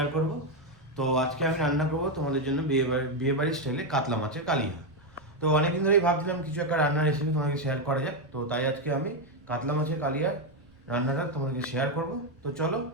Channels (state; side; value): noise; right; rumble, 28 dB below the sound